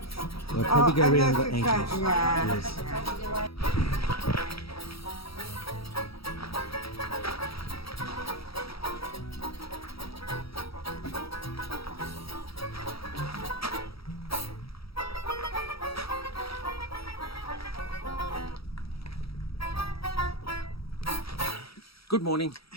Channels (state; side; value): late; right; 0.76 ms